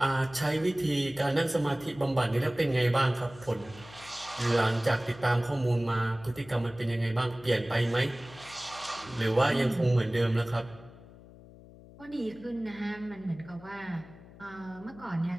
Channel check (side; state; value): left; noise; hum, 20 dB below the sound